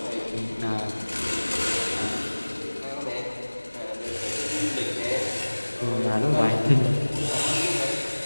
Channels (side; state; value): both; inverted; correlation -1.00